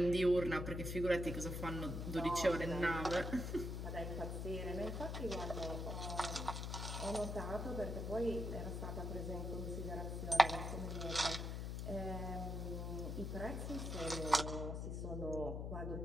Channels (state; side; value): noise; left; hum, 3 dB below the sound